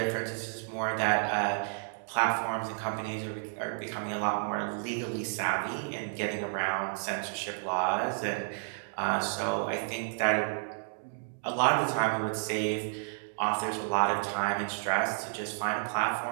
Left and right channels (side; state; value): left; silent; digital silence